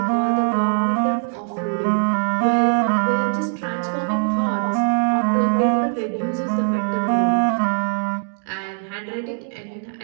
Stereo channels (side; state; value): left; silent; digital silence